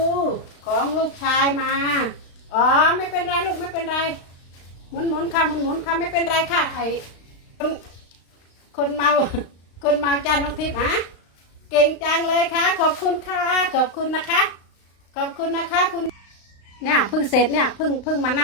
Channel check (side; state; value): right; late; 35 ms